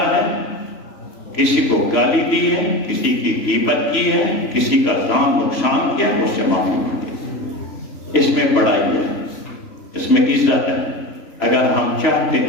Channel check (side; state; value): right; late; 3.0 ms